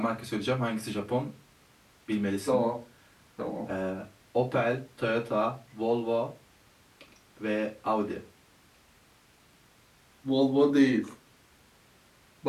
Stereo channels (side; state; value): both; identical; correlation 1.00